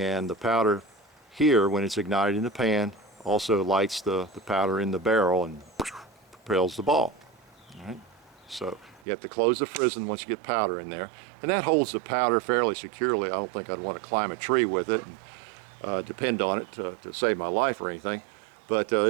the powder here, when it's ignited in the pan, also lights the powder in the barrel and propels the ball. All right. So you have to close the frizzen once you get powder in there. And that holds the powder fairly securely. I don't think I'd want to climb a tree with it and depend on it to save my life or anything. But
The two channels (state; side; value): drops out; left; at 9.1 s